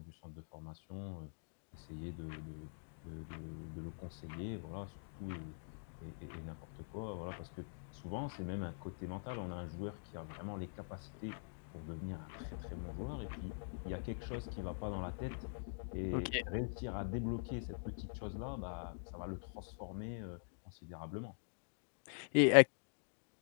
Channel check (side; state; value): right; silent; digital silence